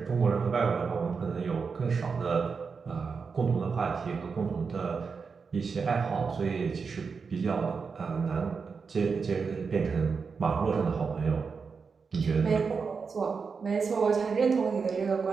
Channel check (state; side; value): quieter; left; 5.3 dB